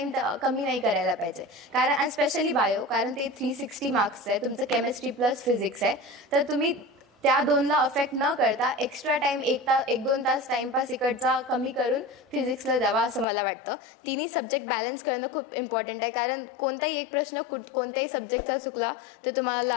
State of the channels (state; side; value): drops out; right; at 13.2 s